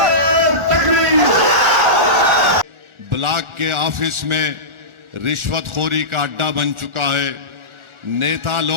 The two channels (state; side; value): late; left; 1.4 ms